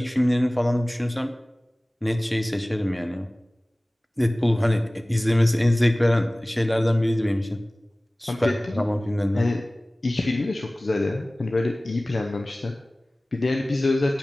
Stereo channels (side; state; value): both; normal; correlation 0.98